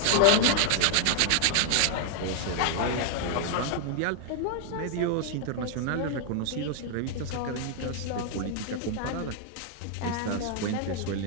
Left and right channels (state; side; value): different; both; correlation 0.00